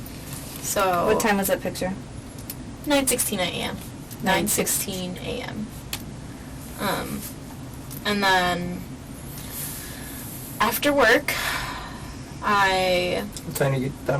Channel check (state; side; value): identical; both; correlation 1.00